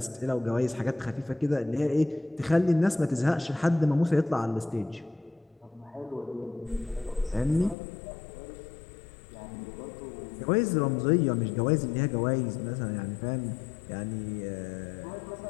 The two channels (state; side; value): drops out; right; at 7.8 s